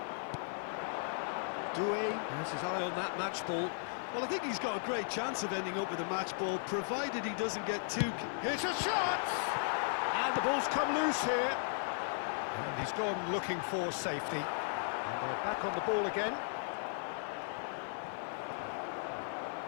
Doué has his eye on that match ball. Well, I think he's got a great chance of ending up with a match ball, provided he doesn't get too... Here's a shot! And the ball's come loose here. And he's gone looking for safety. And they're back on the ball again.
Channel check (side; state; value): right; silent; 54 dB below the other